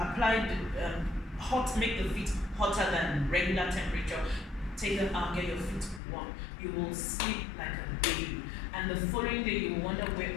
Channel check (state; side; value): drops out; right; at 6.0 s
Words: the make the feet hotter than regular temperature. Take them out, get your feet warm. You will sleep like a baby. And the following day, you will wonder where